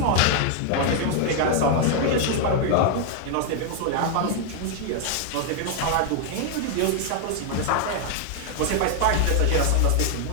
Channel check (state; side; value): different; both; correlation 0.00